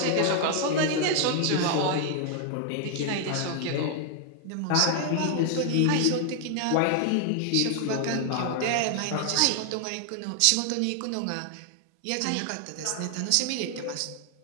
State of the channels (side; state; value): both; different; correlation 0.00